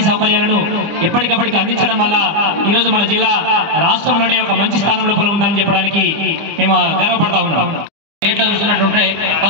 సౌకర్యాలను ఎప్పటికప్పటికి అందించడం వల్ల ఈరోజు మన జిల్లా రాష్ట్రంలోనే ఒక మంచి స్థానం లోపల ఉందని చెప్పడానికి మేము గర్వపడతా ఉన్నాం. స్టేట్లో చూసినట్టుంటే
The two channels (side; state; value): left; late; 25 ms